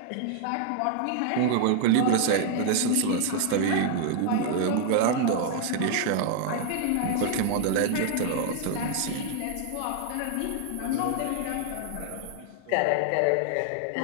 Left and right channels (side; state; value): both; different; correlation -0.01